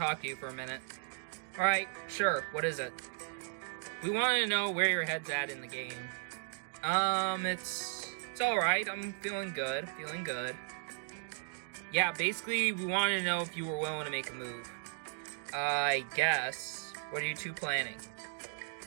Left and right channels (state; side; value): silent; left; digital silence